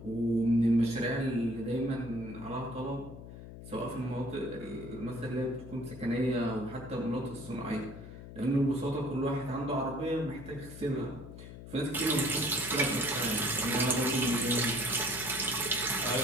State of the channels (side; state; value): left; noise; hum, 13 dB below the sound